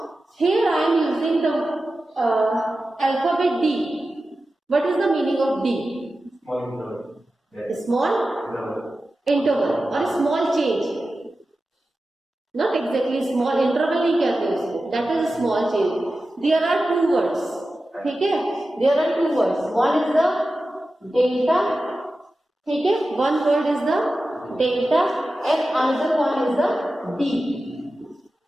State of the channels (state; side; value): normal; both; correlation 0.93